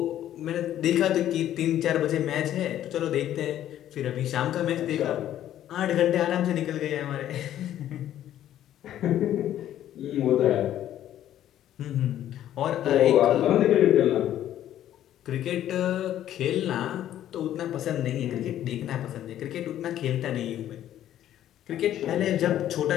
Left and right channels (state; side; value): quieter; right; 11.8 dB